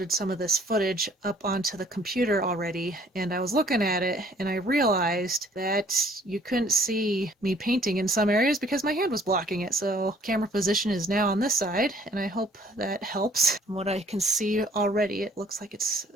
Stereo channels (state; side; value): normal; both; correlation 0.58